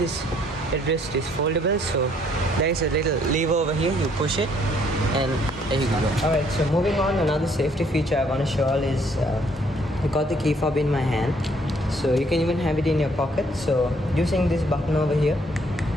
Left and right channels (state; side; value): normal; both; correlation 0.65